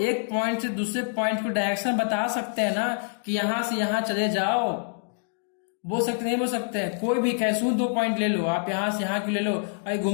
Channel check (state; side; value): silent; right; digital silence